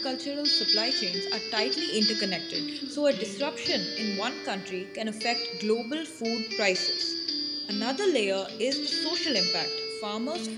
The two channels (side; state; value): both; identical; correlation 1.00